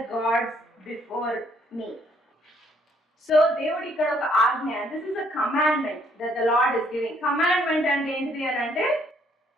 gods before me. So దేవుడు ఇక్కడ ఒక ఆజ్ఞ, this is a commandment that the Lord is giving. Commandment అంటే ఏంటిది అని అంటే,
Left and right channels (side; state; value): both; normal; correlation 0.67